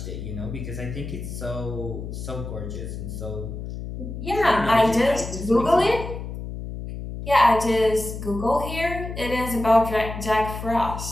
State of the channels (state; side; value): noise; left; hum, 8 dB below the sound